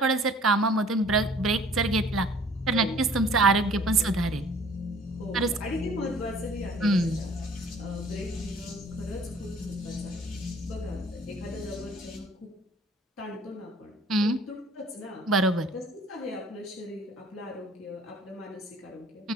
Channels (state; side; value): normal; both; correlation 0.52